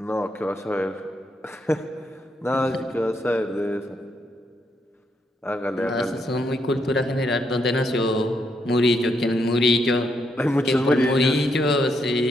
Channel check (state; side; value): normal; both; correlation 0.78